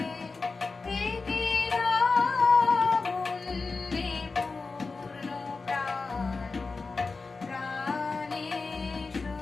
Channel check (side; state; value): right; quieter; 4.1 dB